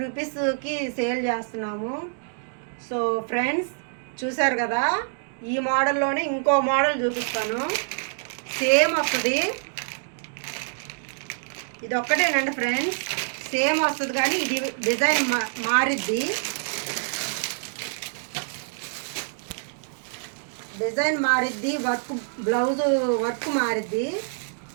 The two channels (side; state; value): left; silent; digital silence